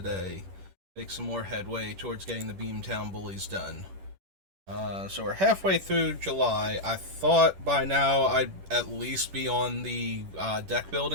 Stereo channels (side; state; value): left; late; 10 ms